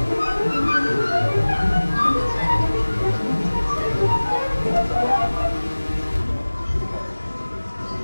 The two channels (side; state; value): both; inverted; correlation -1.00